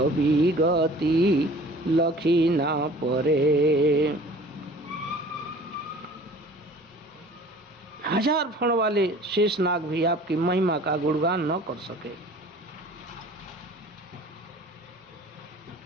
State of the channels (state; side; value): normal; both; correlation 0.47